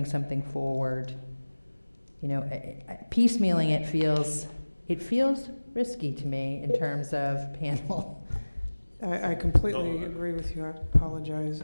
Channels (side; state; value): both; inverted; correlation -1.00